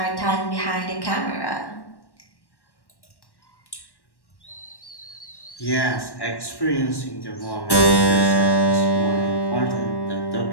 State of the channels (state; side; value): late; right; 1.1 ms